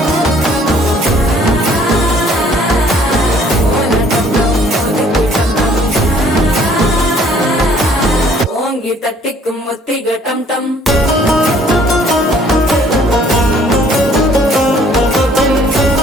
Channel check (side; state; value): both; normal; correlation 0.59